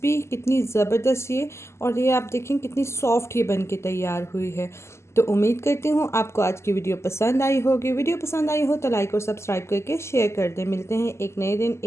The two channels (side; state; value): right; late; 0.13 ms